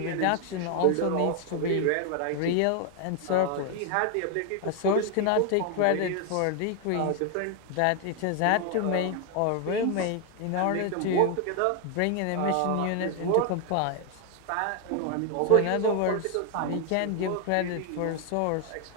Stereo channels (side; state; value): both; different; correlation 0.00